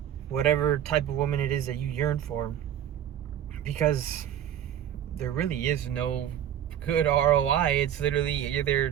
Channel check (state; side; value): quieter; left; 10.3 dB